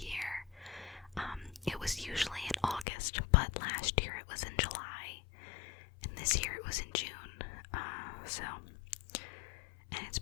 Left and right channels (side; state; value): right; drops out; at 2.9 s